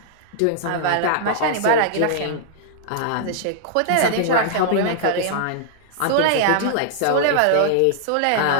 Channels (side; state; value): both; different; correlation -0.01